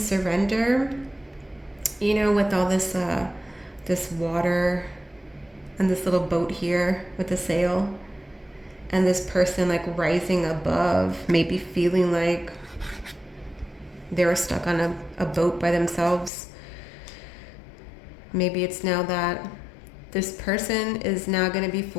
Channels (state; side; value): drops out; right; at 16.3 s